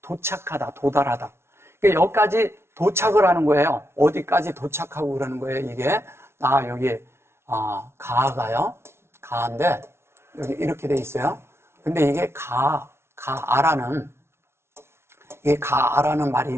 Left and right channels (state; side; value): late; left; 0.12 ms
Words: 도착하다, 도달하다. 그러니까 여기까지 도착을 하는 거예요. 어디까지 도착하고 그러는 거예요, 이게. 여기, 가가요. 가인데, 여기 이렇게 돼 있어요. 근데 이게 가아라는 말이